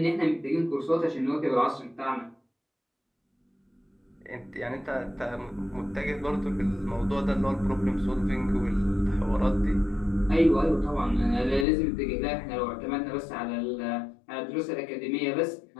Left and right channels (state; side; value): drops out; right; at 11.7 s